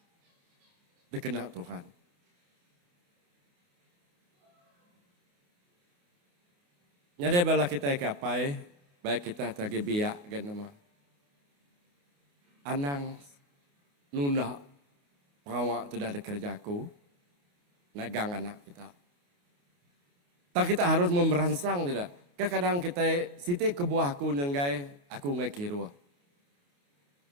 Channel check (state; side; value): late; left; 28 ms